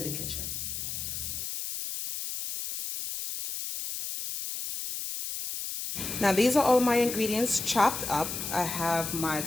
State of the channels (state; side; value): noise; left; hiss, 5 dB below the sound